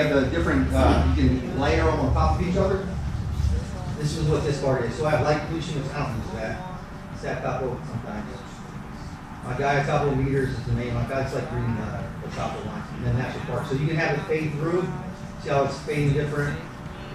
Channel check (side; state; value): both; identical; correlation 1.00